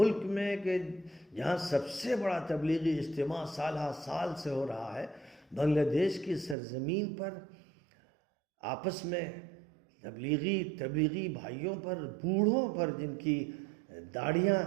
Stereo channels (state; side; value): drops out; left; at 6.6 s